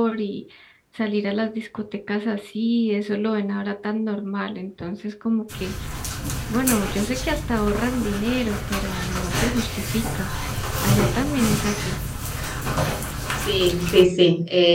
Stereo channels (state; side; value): identical; both; correlation 1.00